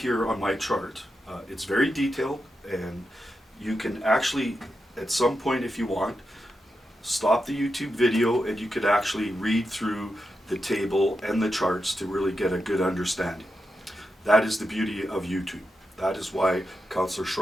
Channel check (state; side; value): normal; both; correlation 0.87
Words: on my chart, it's very detailed, and you can actually at some point, if you want, stop the YouTube video and you could actually read through the table and the charts to really get a good understanding. That is the beauty of YouTube. That is why Councillor